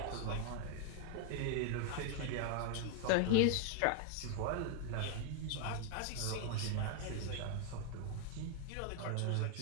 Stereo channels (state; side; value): different; both; correlation 0.00